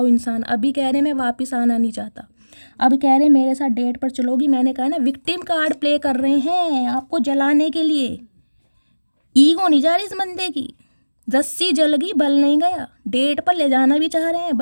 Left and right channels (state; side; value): inverted; both; correlation -1.00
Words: इंसान। अभी कह रहे मैं वापस आना नहीं चाहता, अब कह रहे मेरे साथ डेट पर चलोगी। मैंने कहा ना, विक्टिम कार्ड प्ले कर रहे हैं आपको जलाने के लिए। ईगो नहीं जा रही इस बंदे की, रस्सी जल गई बल नहीं गया। डेट पर ले जाना भी चाह रहे हैं,